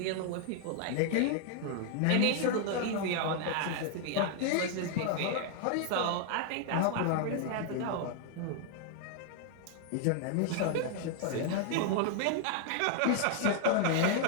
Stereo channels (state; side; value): different; both; correlation 0.00